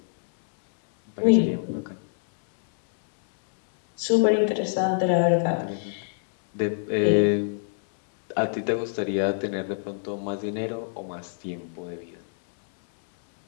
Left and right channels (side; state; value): right; silent; 62 dB below the other